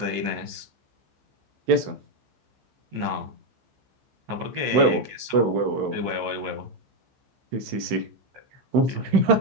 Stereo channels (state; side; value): late; left; 15 ms